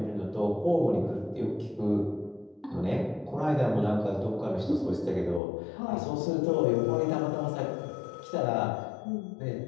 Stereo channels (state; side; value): drops out; right; at 5.4 s